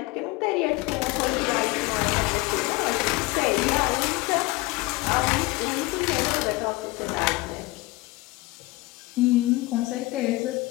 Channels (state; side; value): quieter; right; 21.5 dB